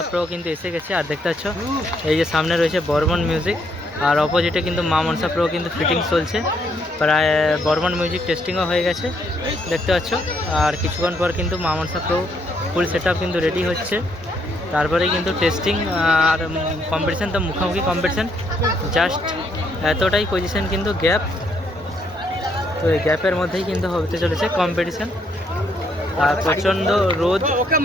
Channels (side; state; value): both; normal; correlation 0.72